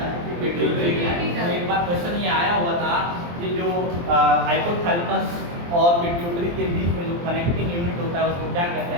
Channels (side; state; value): left; late; 23 ms